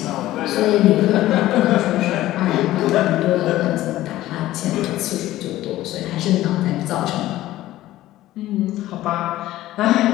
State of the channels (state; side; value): quieter; right; 15.3 dB